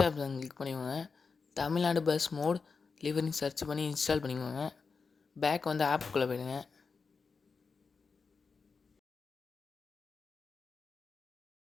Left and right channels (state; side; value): quieter; right; 4.9 dB